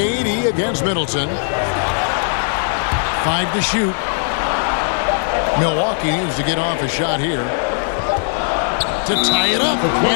against Middleton. 5 to shoot. Milwaukee needs to get off a shot here to tie it up,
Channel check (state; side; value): silent; right; 62 dB below the other